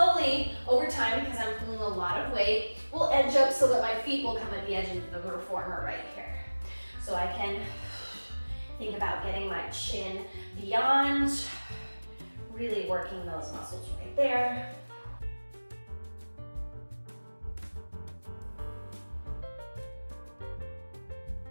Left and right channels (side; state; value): both; inverted; correlation -1.00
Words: over time, because I'm pulling a lot of weight, will edge up so that my feet will come at the edge of the reformer right here. So I can think about getting my chin beyond, really working those muscles right there.